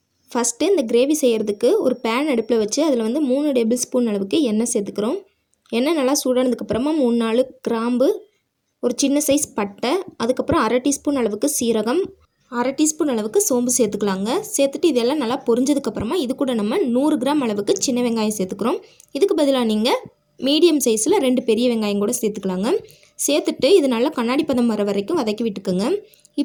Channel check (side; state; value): both; identical; correlation 1.00